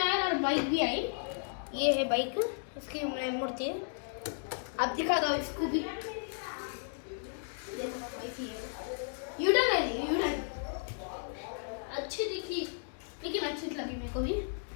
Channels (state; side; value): silent; right; digital silence